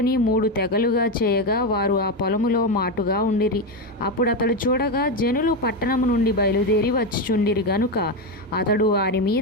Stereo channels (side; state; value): both; normal; correlation 0.11